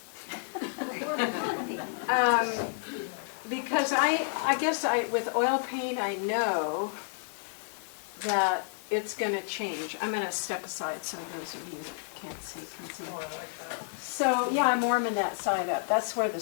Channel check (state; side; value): silent; right; 57 dB below the other